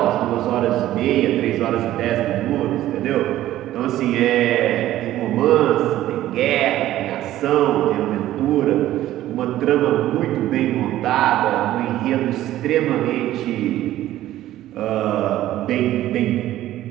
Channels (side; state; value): left; quieter; 14.0 dB